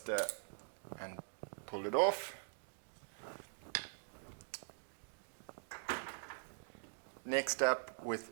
and pull it off. Next up,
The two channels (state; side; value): silent; left; digital silence